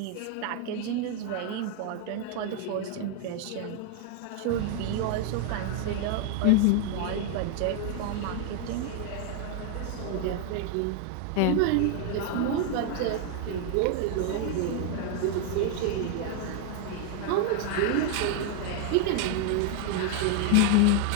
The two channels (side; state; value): both; different; correlation 0.01